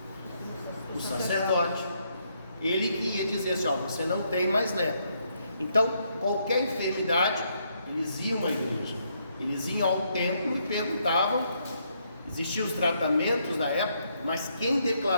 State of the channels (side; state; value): both; inverted; correlation -0.75